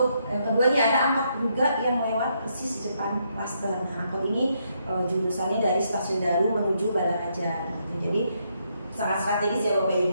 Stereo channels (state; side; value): inverted; both; correlation -0.76